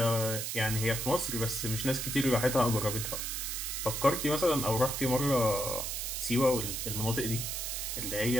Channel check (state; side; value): noise; right; hiss, 3 dB below the sound